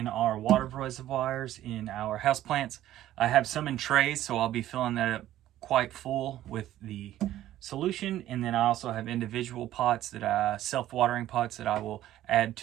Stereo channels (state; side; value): quieter; left; 13.4 dB